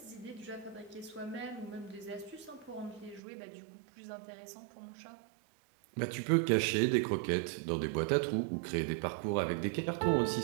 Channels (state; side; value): drops out; left; at 3.2 s